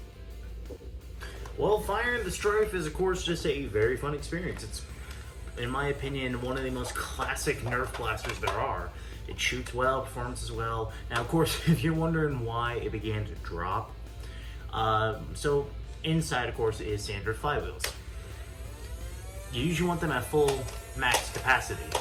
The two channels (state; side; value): identical; both; correlation 1.00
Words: Well, firing the Stryfe is, of course, just a very fun experience. It's, in my opinion, one of the most classic Nerf blasters there are. It shoots well, performs as well. Now, of course, if you're wondering why it began to drop, so inside, of course, is standard flywheels. You usually want them at full max capacity.